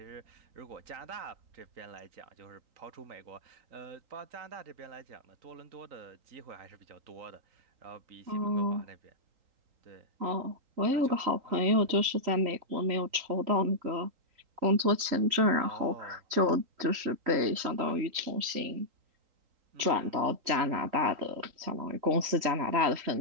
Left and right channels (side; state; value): left; late; 3.8 ms